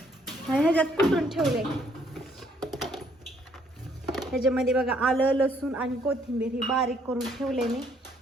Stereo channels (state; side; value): normal; both; correlation 0.67